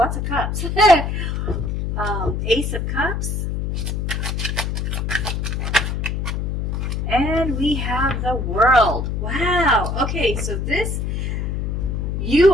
of cups. Ace of Cups. And we have the World. Wow. Okay, so this, you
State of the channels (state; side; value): noise; left; hum, 1 dB below the sound